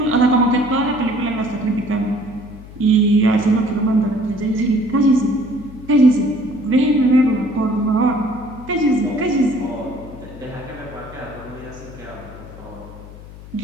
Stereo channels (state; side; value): noise; left; hum, 17 dB below the sound